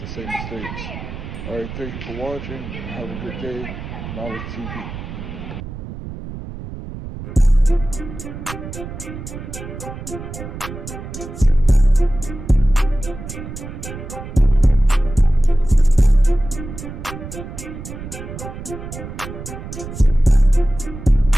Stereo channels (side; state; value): right; noise; rumble, 10 dB below the sound